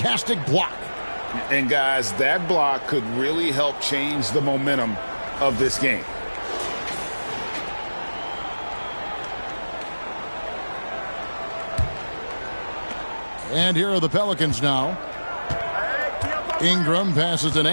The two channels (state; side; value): inverted; both; correlation -1.00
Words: block. And guys, that block could really help change the momentum of this game. And here are the Pelicans now. Ingram passes to